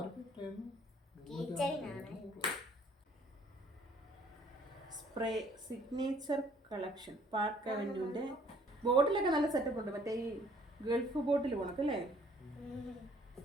കീ ചെയിനാണ്. സ്പ്രേ സിഗ്നേച്ചർ കളക്ഷൻ പാർക്ക് അവന്യൂന്റെ ബോട്ടിലൊക്കെ നല്ല സെറ്റപ്പ് ഉണ്ട്. മറ്റേ ഈ ഗൾഫ് ബോട്ടിൽ പോണക്കല്ലേ,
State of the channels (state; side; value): normal; both; correlation 0.59